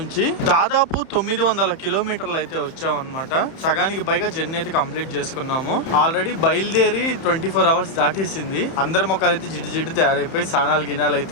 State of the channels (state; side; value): late; right; 31 ms